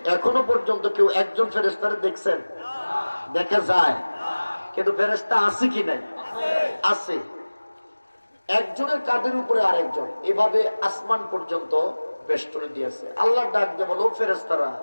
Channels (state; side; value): inverted; both; correlation -1.00